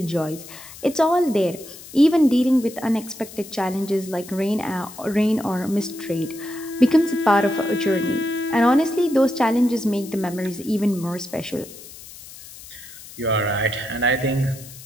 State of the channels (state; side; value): noise; left; hiss, 17 dB below the sound